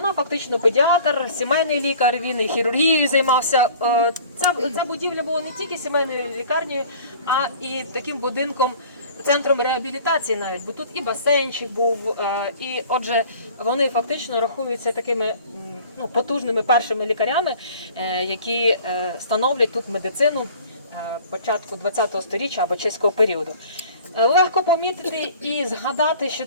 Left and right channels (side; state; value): both; inverted; correlation -0.48